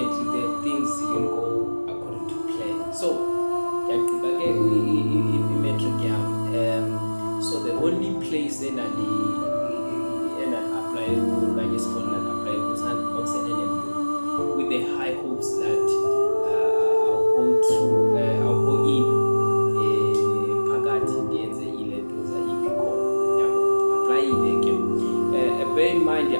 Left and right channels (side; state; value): both; inverted; correlation -1.00